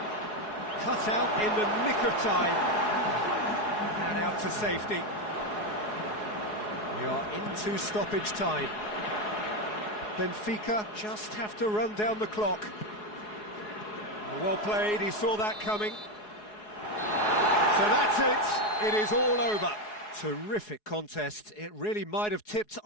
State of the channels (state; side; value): late; right; 4.8 ms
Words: Cut out in the nick of time. And out to safety. We are into stoppage time. Benfica just have to run down the clock. Well played, he saw that coming. So that's it, it is all over. Terrific contest, it really might have tipped